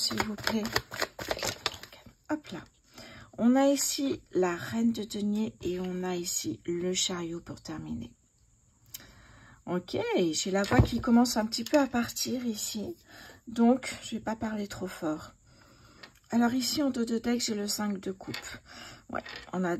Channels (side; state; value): both; identical; correlation 1.00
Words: vous plaît. Hop là. On a ici la reine de denier et on a ici le chariot pour terminer. Ok, j'ai la voix qui commence un petit peu à partir ici. Donc, je ne vais pas parler trop fort. Alors ici, en dos de deck, j'ai le 5 de coupe. Ouais, on a